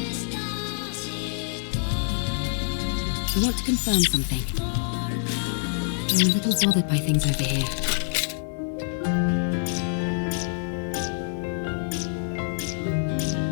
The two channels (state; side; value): silent; right; 61 dB below the other